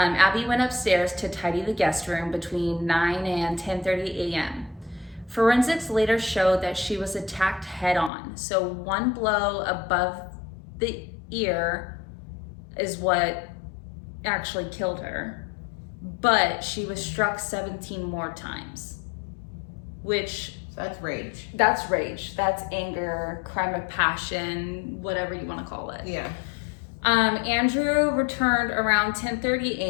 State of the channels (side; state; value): right; drops out; at 8.1 s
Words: went upstairs to tidy the guest room between 9 and 10:30 a.m. Forensics later showed that she was attacked head on. So one blow above the ear is what actually killed her. But she was struck 17 more times, which... That's rage. That's rage. That's anger, crime of passion, whatever you want to call it. Yeah. Andrew returned around 10:30